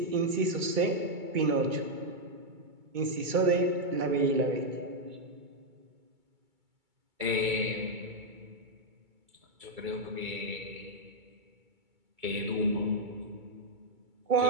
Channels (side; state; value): left; late; 2.3 ms